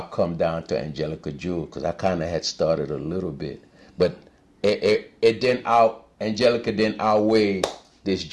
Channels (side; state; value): both; identical; correlation 1.00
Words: come down to Angelica Jewel because I kind of had started a little bit. But Angelica didn't outweigh this